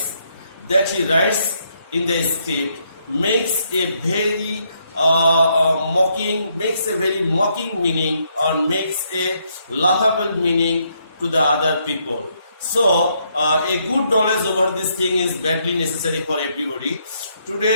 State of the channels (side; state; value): both; inverted; correlation -0.74